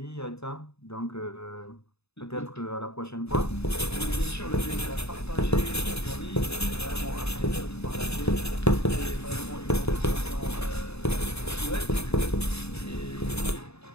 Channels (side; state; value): right; late; 0.79 ms